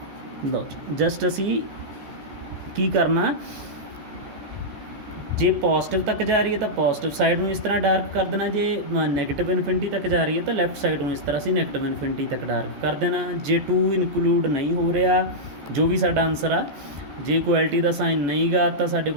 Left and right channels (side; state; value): left; late; 14 ms